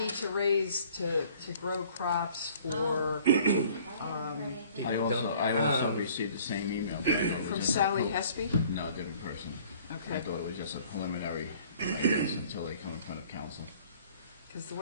uh, to grow crops for, I didn't put anything. I also received the same email. but I thought it was from just a Sally pro- Hespy? No, different person. I Okay. thought it was just a preliminary, I guess, until they come in front of council. Because the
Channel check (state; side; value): inverted; both; correlation -0.54